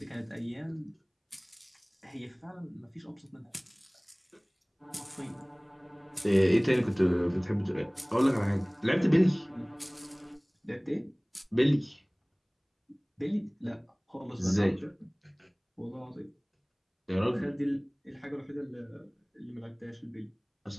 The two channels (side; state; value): both; identical; correlation 1.00